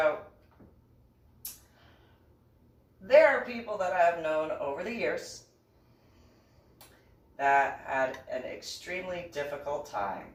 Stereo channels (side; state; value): both; identical; correlation 1.00